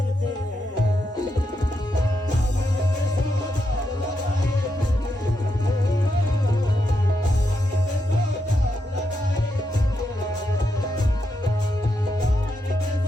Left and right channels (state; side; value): normal; both; correlation 0.83